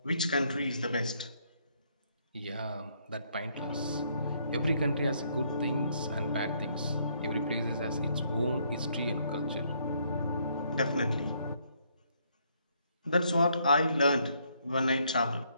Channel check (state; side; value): inverted; both; correlation -0.70